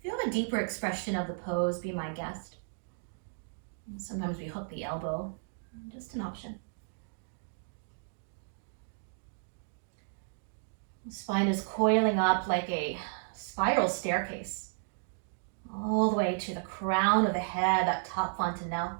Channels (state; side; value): silent; left; digital silence